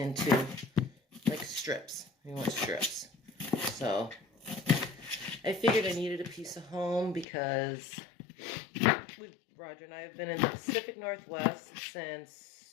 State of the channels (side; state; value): right; drops out; at 7.2 s